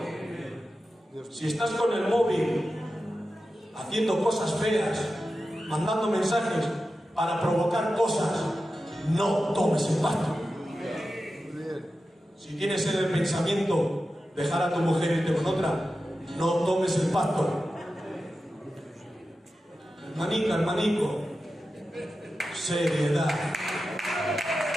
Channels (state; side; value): normal; both; correlation 0.92